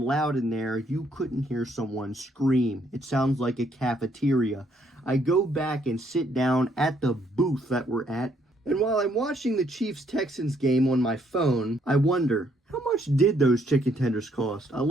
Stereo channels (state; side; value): normal; both; correlation 0.69